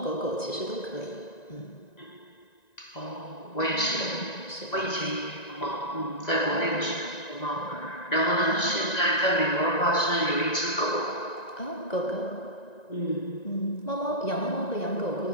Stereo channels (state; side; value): late; right; 1.9 ms